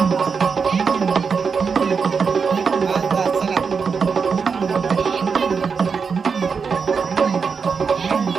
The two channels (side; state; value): left; quieter; 5.6 dB